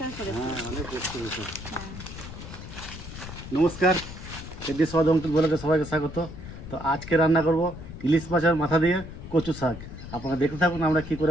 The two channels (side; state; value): left; noise; rumble, 12 dB below the sound